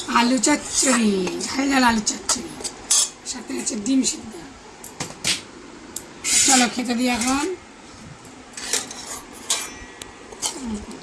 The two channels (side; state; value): both; identical; correlation 1.00